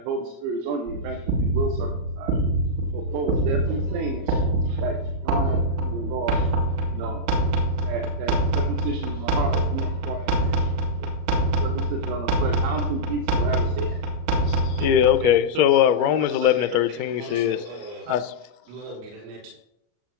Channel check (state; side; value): late; left; 33 ms